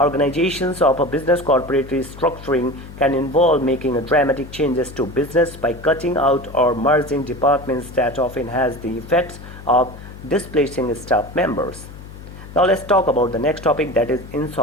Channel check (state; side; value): noise; left; hum, 15 dB below the sound